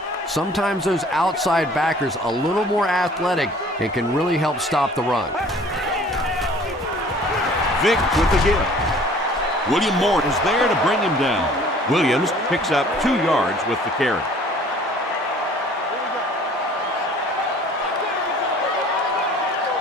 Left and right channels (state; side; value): normal; both; correlation 0.51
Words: Sometimes those outside backers a little more athletic and can really help stop the run. Vick with the give. William Moore is there to bring him down. Williams picks up 2 yards with the carry.